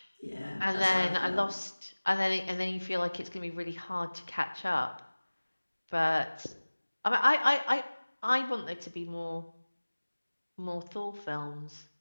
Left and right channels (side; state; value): both; inverted; correlation -1.00